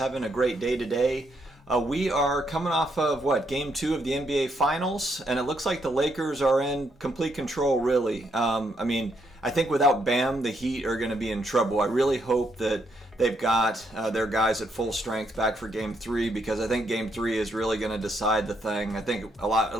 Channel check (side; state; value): both; normal; correlation 0.76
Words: a great day today. We are coming off of Game 2 of the NBA Finals, and it looks like the Lakers are in complete control, really. I think without Bam, the Heat are going to be in trouble. I really hope that they've got their guys at full strength back for Game 3, because I think Game 3 is really going to decide the thing. I think a lot